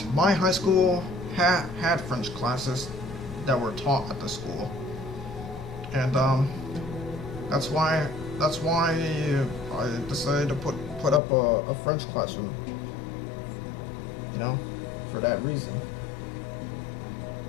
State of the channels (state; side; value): drops out; right; at 11.2 s